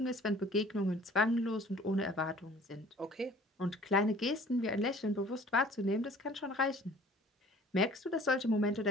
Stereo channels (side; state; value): both; normal; correlation 0.51